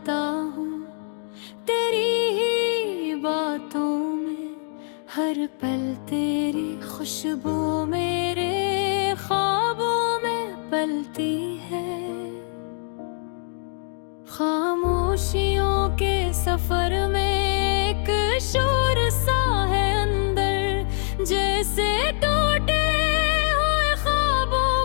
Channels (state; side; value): silent; right; 63 dB below the other